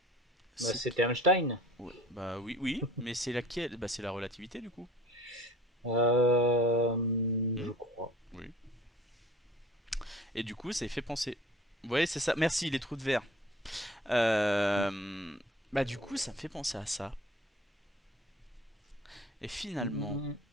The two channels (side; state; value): both; normal; correlation 0.46